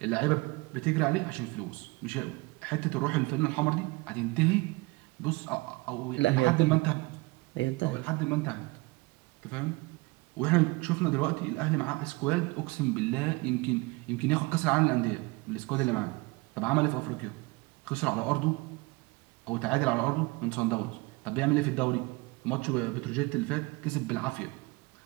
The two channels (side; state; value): left; quieter; 24.5 dB